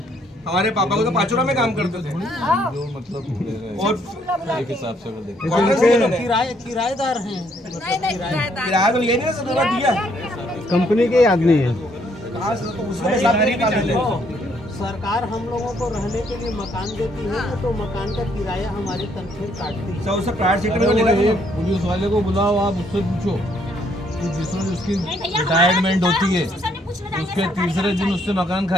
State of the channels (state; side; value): normal; both; correlation 0.69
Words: हमारे पापा को तो पाचोरा में काम करते थे। जो मतलब ले रहे हैं, और एक हिसाब से अगर देखें किराएदार हैं। किराया तो ये नहीं सर दिया कंपनी के आदमी है। कहाँ से तो उसमें हिसाब नहीं निकाले। सरकार हम लोगों को रहने के लिए मकान देती है तो मकान का किराया हमारे तनख्वाह काटती है। सर उससे प्राइवेट सेक्टर में अरे लेना वो चाहिए। एक पुलिस वाले को बुलाओ, आप उससे पूछो कि जिसमें उसकी रिटायरमेंट होती है उसके तीसरे दिन उससे मकान